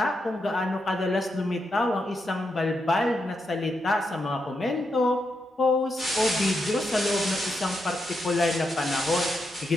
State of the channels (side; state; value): both; normal; correlation 0.84